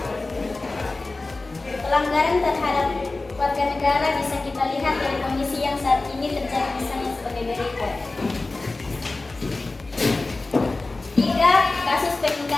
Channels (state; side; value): quieter; right; 3.3 dB